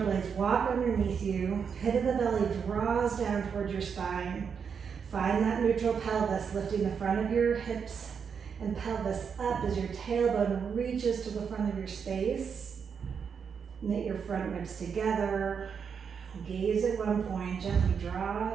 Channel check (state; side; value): quieter; left; 6.6 dB